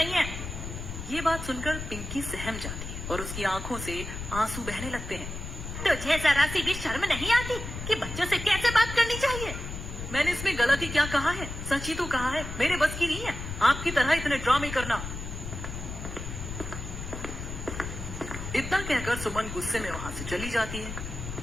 है। ये बात सुनकर पिंकी सहम जाती है और उसकी आंखों से आंसू बहने लगते हैं। तुझे जरा सी भी शर्म नहीं आती कि बच्चों से कैसे बात करनी चाहिए? मैंने इसमें गलती क्या कहा है? सच ही तो कहा है, मेरे बस की नहीं है आपकी तरह इतने ड्रामे करना। इतना कहकर सुमन गुस्से में वहाँ से चली जाती है।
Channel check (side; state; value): left; noise; rumble, 7 dB below the sound